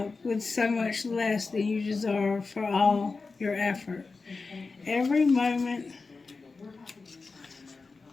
with so much less than you deserve for all your effort. Every moment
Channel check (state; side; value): quieter; right; 4.2 dB